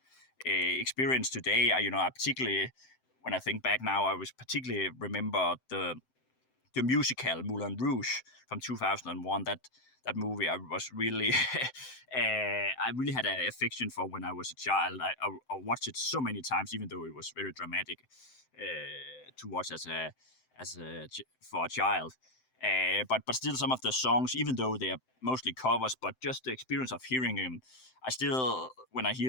experience today. I particularly, when I think back now, I was particularly remember the musical Moulin Rouge from 2001. That movie I was really I really had an affection for when I was a child. I watched it so many times, even though it was very dramatic to watch for a child. But still, some of the songs, even though they are mostly covers, but just the experience of hearing them, I still, when I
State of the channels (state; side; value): late; right; 7.8 ms